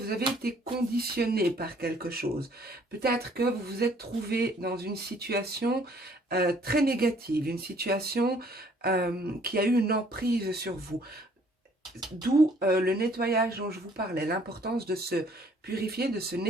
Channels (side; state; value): both; normal; correlation 0.60